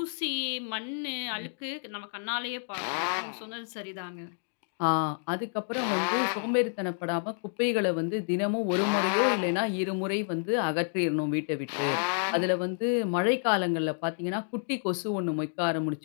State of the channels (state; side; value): silent; right; digital silence